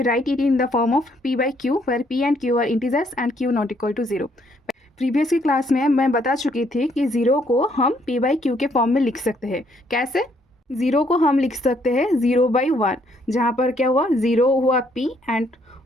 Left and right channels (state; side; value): normal; both; correlation 0.69